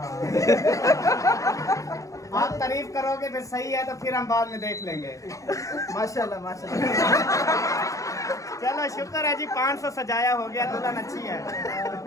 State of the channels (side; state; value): right; late; 0.16 ms